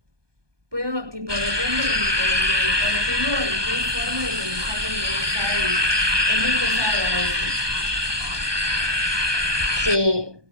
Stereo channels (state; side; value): late; left; 1.2 ms